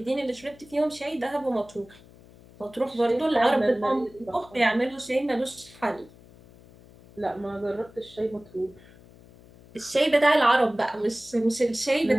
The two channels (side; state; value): left; noise; hum, 24 dB below the sound